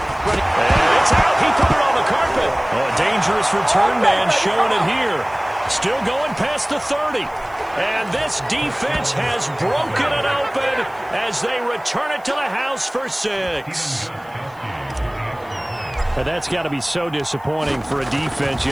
And it's out. He put it on the carpet. Oh, a dangerous return man showing it here. Still going past the 30. And this defense has broken it open as they return it to the house for 6. But that's got to be so disappointing for a defense.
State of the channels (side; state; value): left; noise; hiss, 29 dB below the sound